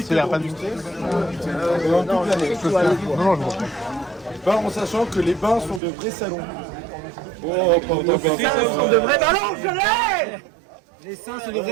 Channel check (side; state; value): left; drops out; at 5.8 s